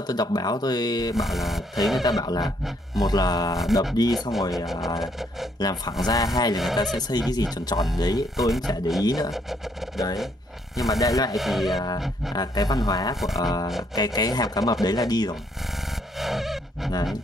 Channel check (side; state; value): both; normal; correlation 0.70